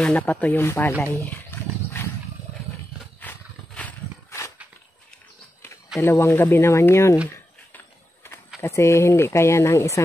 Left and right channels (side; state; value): both; normal; correlation 0.89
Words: napatuyong palay. 2 gabi naman yun. Kasi hindi kaya ng